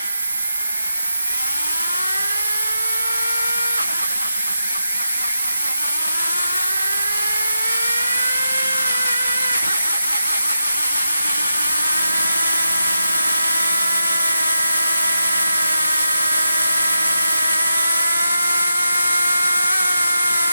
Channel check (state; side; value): inverted; both; correlation -0.88